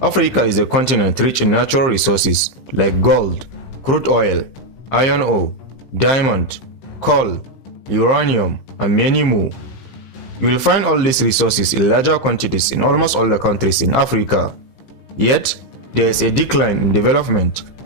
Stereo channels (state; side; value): late; right; 15 ms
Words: is a continent rich in natural resources like gold, crude oil, iron ore, diamond, coal, uranium, and many more. You will find all these resources in larger quantities in almost all the countries in Africa. Yet, there is a decline in development